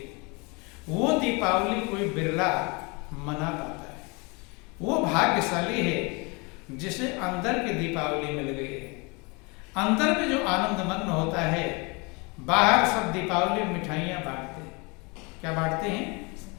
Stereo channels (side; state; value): right; quieter; 29.3 dB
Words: वो दीपावली कोई बिरला मना पाता है। वो भाग्यशाली है जिसे अंदर की दीपावली मिल गई है। अंदर में जो आनंद मग्न होता है। बाहर सब दीपावली में मिठाइयाँ बांटते हैं। क्या बांटते हैं?